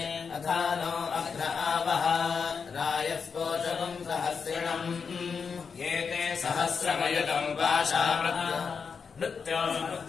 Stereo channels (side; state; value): right; quieter; 5.8 dB